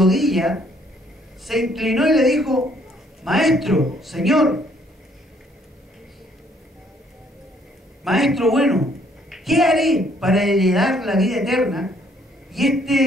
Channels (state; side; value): normal; both; correlation 0.65